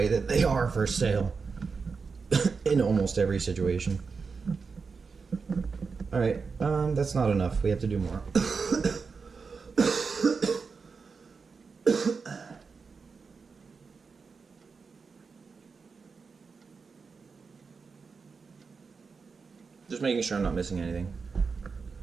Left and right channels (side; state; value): left; quieter; 5.0 dB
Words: that they are for sale in almost every situation. Alright, that's not enough. We have to do more. Just making sure I'm not missing anything.